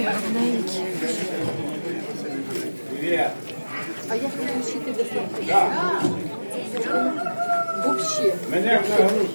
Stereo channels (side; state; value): both; inverted; correlation -1.00